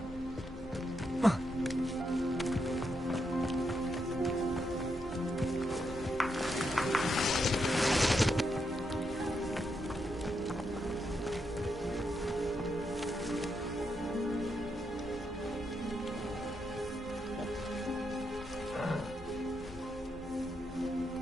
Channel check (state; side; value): normal; both; correlation 0.82